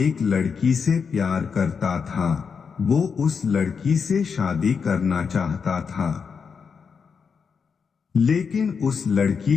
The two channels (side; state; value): right; quieter; 6.0 dB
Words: लड़की से प्यार करता था। वो उस लड़की से शादी करना चाहता था, लेकिन उस